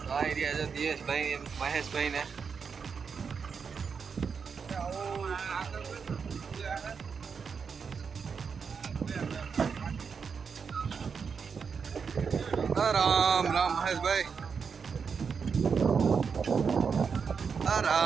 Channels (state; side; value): quieter; left; 6.0 dB